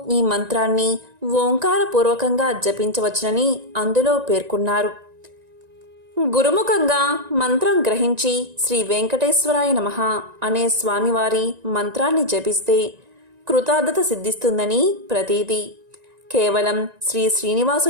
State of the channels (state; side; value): late; left; 1.9 ms